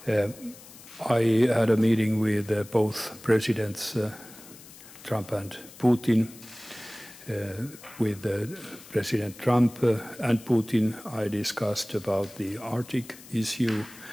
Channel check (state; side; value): noise; left; hiss, 19 dB below the sound